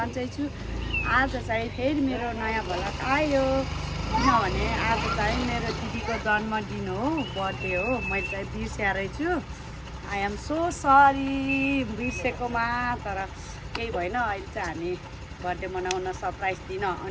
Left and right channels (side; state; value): both; identical; correlation 1.00